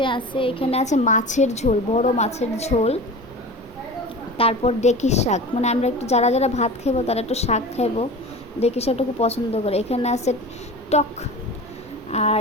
আছে, এখানে আছে মাছের ঝোল, বড় মাছের ঝোল। তারপর ডেকি শাক, মানে আমরা একটু যারা যারা ভাত খাইবো তারা একটু শাক খাইবো, ডেকি শাকটা খুব পছন্দ করে। এখানে আছে টক, আর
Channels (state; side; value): normal; both; correlation 0.34